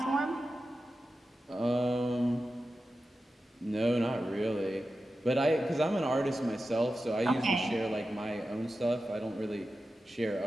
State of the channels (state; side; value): normal; both; correlation 0.92